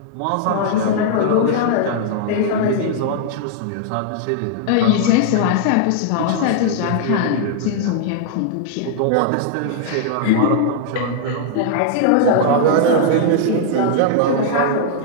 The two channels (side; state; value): both; different; correlation -0.01